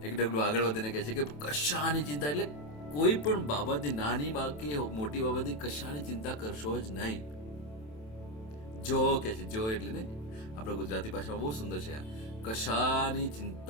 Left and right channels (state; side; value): late; right; 27 ms